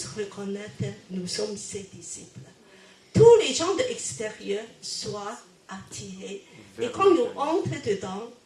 reconnaissent que nous sommes ses disciples. Tous les gens de l'extérieur soient attirés. Et quand nous entrons dedans,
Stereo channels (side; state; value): both; identical; correlation 1.00